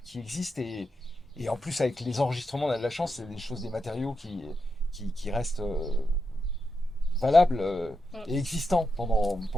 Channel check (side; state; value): both; normal; correlation 0.86